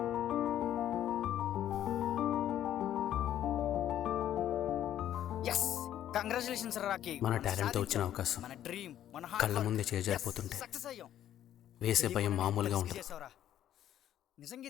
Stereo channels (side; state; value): right; quieter; 11.4 dB